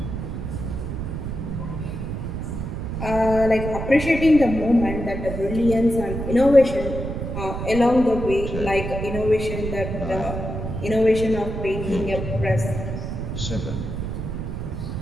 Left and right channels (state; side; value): noise; right; rumble, 5 dB below the sound